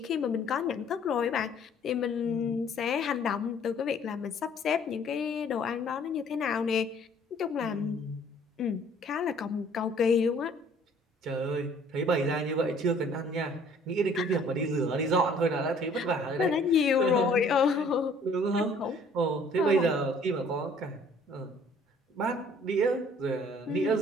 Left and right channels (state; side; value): normal; both; correlation 0.57